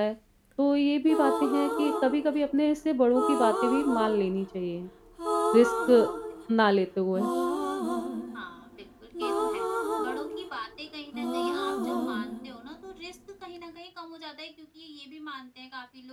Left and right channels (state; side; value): identical; both; correlation 1.00